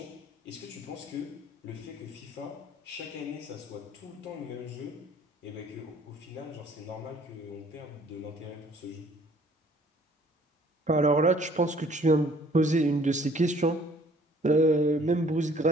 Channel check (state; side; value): normal; both; correlation 0.57